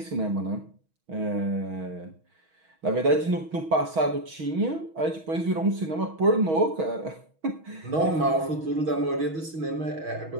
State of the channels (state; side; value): late; left; 6.3 ms